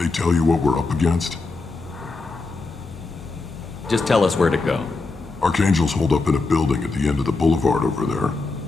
tell you what we're up against? Just tell us where to go. Archangel's holed up in a building at the end of the boulevard over there.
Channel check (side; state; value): right; quieter; 3.7 dB